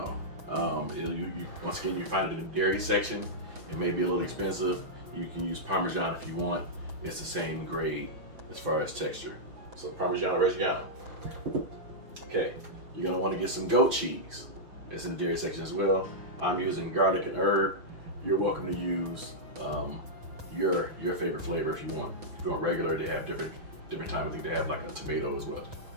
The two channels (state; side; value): late; left; 6.1 ms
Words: Once again, you find it in the dairy section. It may be a little expensive. You can use Parmesan if you want. It's the same grade as far as texture. So Parmigiano-Reggiano. Okay, you're gonna want to get some goat cheese. It's in the dairy section as well. I'm using garlic and herb. You're welcome to use your favorite flavor if you want. If you want regular, they have different type. I think they have like a tomato as well.